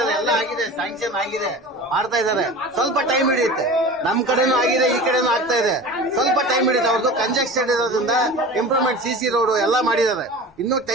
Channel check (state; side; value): normal; both; correlation 0.35